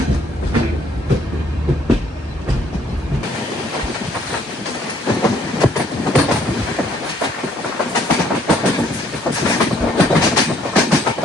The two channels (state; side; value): normal; both; correlation 0.64